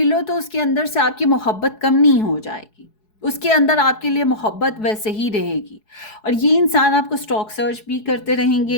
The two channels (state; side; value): late; right; 4.7 ms